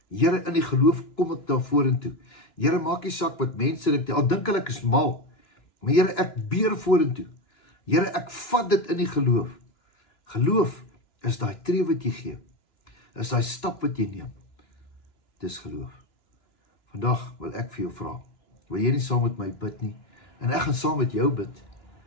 Here, in die geloof kom ek daar vorentoe. Here, maak nie saak wat mense dink, al dink hulle ek is mal, maar Here, ek beer vorentoe. Here, ek vat dit in die geloof. Geloof is daai tree wat jy gee, is daai stap wat jy neem. Dis geloof. Vandag wil ek vir jou vra, wil jy nie saam met my bid nie, en ek gaan saam met jou bid,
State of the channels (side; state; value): right; late; 2.9 ms